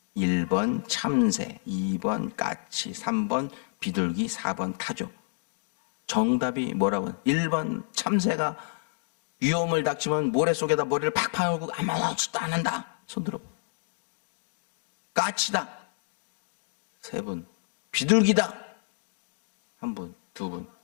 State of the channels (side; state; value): right; silent; digital silence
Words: 1번 참새, 2번 까치, 3번 비둘기, 4번 타조. 정답이 뭐라고요? 1번 참새가 위험을 닥치면 모래 속에다 머리를 팍 파묻고 아무것도 안 한다. 손 들어. 까치다. 3분. 비둘기다. 1분, 2분.